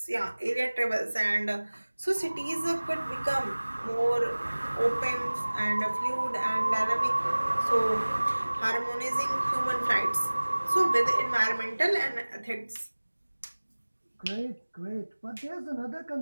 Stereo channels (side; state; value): both; inverted; correlation -1.00